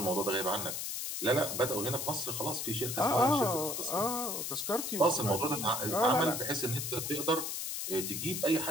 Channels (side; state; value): left; noise; hiss, 3 dB below the sound